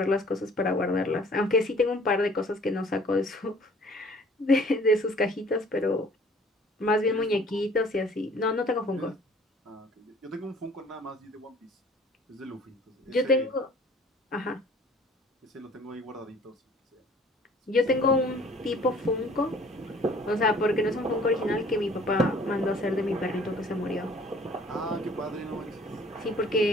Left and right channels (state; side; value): normal; both; correlation 0.53